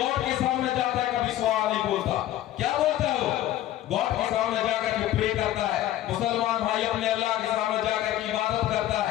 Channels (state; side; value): quieter; right; 13.4 dB